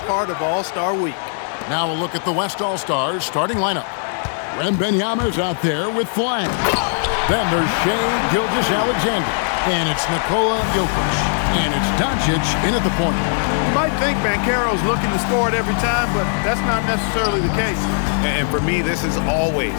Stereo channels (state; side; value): silent; right; 66 dB below the other